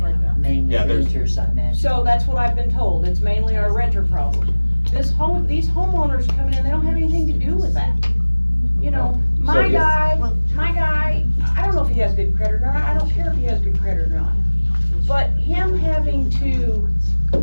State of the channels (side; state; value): both; inverted; correlation -1.00